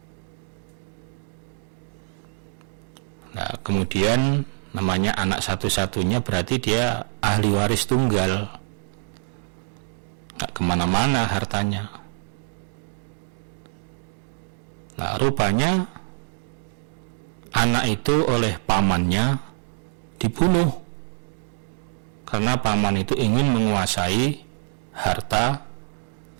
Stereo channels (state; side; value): silent; left; digital silence